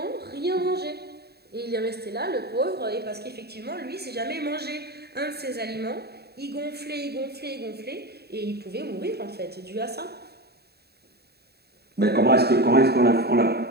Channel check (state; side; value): late; left; 0.47 ms